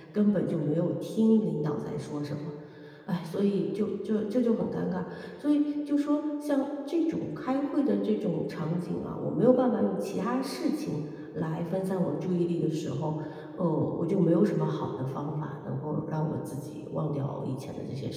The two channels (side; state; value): both; identical; correlation 1.00